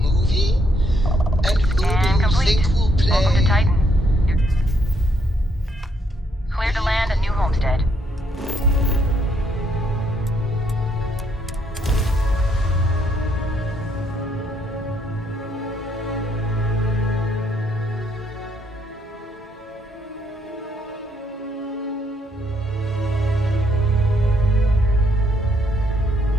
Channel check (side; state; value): both; normal; correlation 0.72